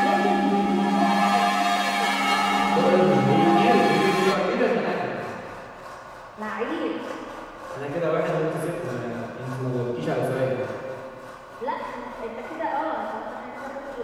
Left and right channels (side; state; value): both; identical; correlation 1.00